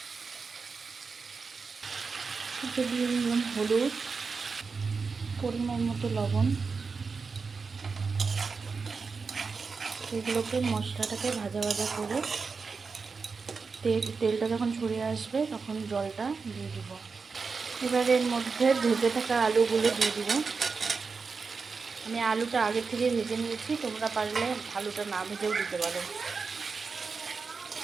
দিয়ে নিলাম হলুদ, পরিমাণ মতো লবণ। এগুলোকে মশলাটাকে ভাজা ভাজা করে তেলটা যখন ছড়িয়ে আসবে তখন জলটা দিয়ে দিব। এবার এর মধ্যে ভেজে থাকা আলুগুলো দিয়ে দিব। আমি আলুটা আগে থেকে ভেজে নিয়েছি, তোমরা পারলে আলুটা না ভেজেও দিতে পারো।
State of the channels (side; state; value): left; quieter; 4.8 dB